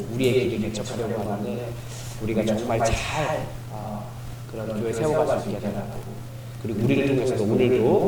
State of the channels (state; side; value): identical; both; correlation 1.00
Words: 우리의 길을 개척하려고 하는데 우리가 정말 잘 그런 교회 세워갈 수 있게 해달라고, 그리고 우리를 통해서도